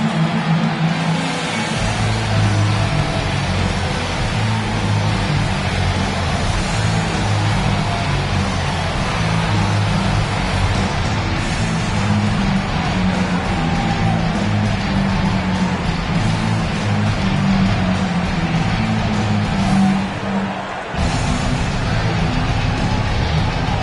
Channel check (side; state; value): both; identical; correlation 1.00